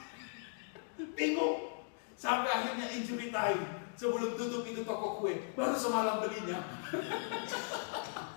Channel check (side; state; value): right; silent; digital silence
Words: Bingung. Sampai akhirnya injury time. Sebelum tutup itu toko kue, baru semalam belinya.